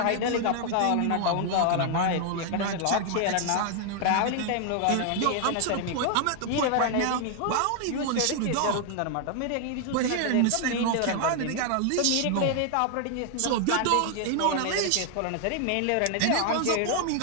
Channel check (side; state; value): both; different; correlation 0.00